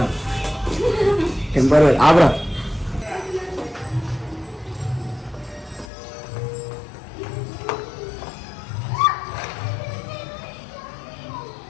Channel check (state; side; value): drops out; right; at 5.9 s